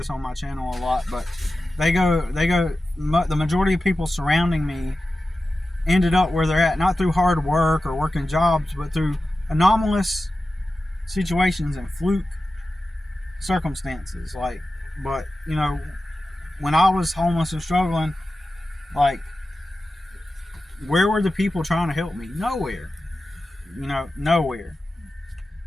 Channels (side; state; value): both; normal; correlation 0.94